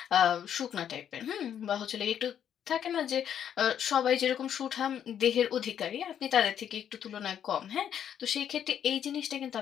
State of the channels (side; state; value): right; quieter; 9.3 dB